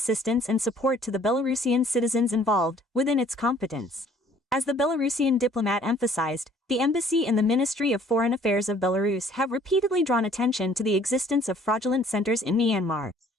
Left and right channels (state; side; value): normal; both; correlation 0.57